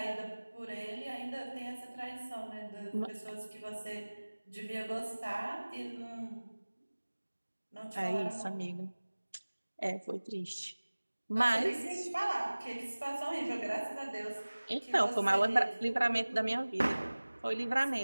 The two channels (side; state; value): both; inverted; correlation -1.00